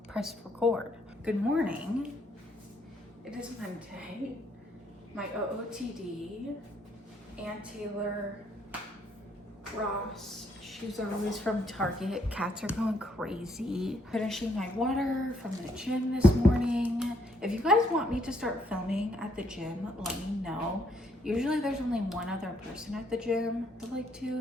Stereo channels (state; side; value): normal; both; correlation 0.70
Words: pressed record. Good morning. It is Monday. My OOTD, Aunt Taylor, Ross, shoes are always from Target. Cats are going crazy. Finishing my water from the gym this morning. If you guys want me to start filming at the gym, let me know. Usually there's only one other person at the gym, I'd like